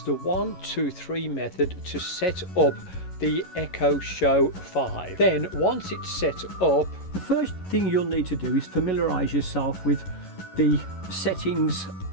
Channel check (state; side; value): late; right; 11 ms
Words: the 1, 2, 3 method to set up the Echo Show 5. Then once it's set up, the first thing you'll need to do is familiarise yourself with the settings